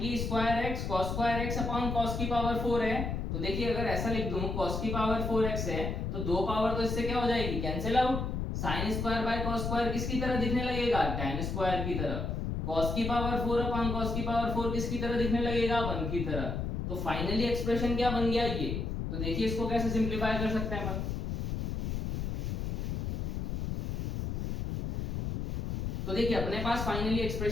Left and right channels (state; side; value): noise; left; rumble, 2 dB below the sound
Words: square x cos square x upon cos की पावर 4 है। तो देखिए अगर ऐसा लिख दूं cos की पावर 4x है तो दो पावर तो इससे क्या हो जाएगी, cancel out, sin square by cos square किसकी तरह दिखने लगेगा, tan स्क्वायर की तरह, cos की पावर 4 अपॉन cos की पावर 4 किसकी तरह दिखने लगेगा, 1 की तरह। तो फाइनली एक्सप्रेशन क्या बन गया ये, तो देखिए इसको कैसे सिंप्लीफाई कर सकते हैं अपन, तो देखिए अपने पास फाइनली